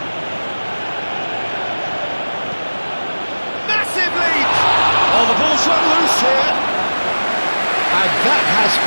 Massive lead! Oh, the ball's run loose here. And that has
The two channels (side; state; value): both; inverted; correlation -1.00